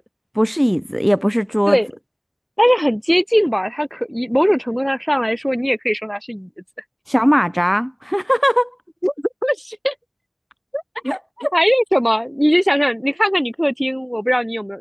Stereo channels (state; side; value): identical; both; correlation 1.00